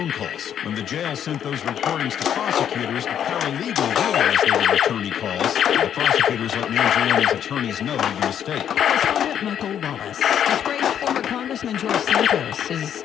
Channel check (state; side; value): quieter; right; 9.4 dB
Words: calls. When the jail sent those recordings to prosecutors, a paralegal realized they were attorney calls. The prosecutors let Mangione's attorneys know of the mistake. Correspondent Michael Wallace. Disgraced former Congressman George Santos is